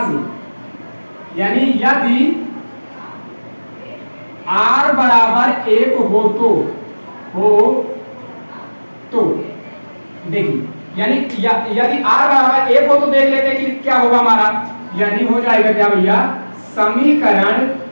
से, यानी यदि r बराबर 1 तो देखिए, यानी यदि r बराबर 1 हो तो देख लेते हैं कि क्या होगा हमारा, यानी हो जाएगा क्या भैया, समीकरण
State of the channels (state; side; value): inverted; both; correlation -1.00